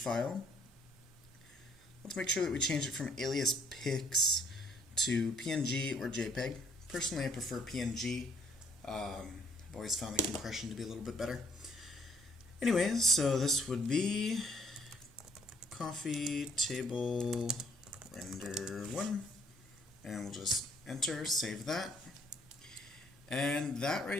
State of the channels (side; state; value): both; normal; correlation 0.65